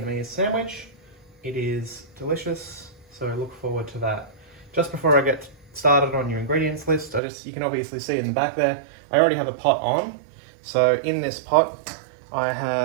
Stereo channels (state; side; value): drops out; left; at 7.2 s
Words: sandwich. It is delicious, so look forward to that. Just before I get started on your ingredients list, you can obviously see in the back there, I already have a pot on. So in this pot, I